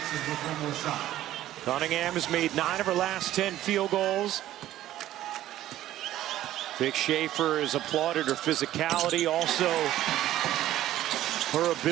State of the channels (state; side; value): quieter; left; 13.6 dB